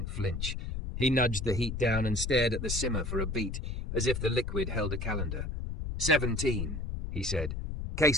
flinch. He nudged the heat down and stared at the simmer for a beat, as if the liquid held a calendar. 17, he said.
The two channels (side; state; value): left; noise; rumble, 4 dB below the sound